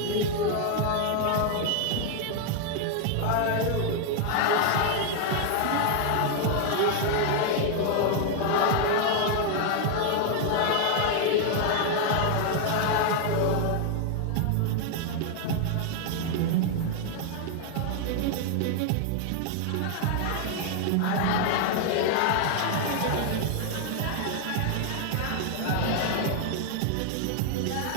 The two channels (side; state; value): both; different; correlation 0.00